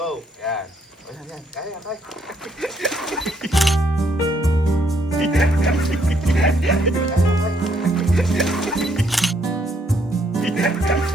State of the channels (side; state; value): both; normal; correlation 0.70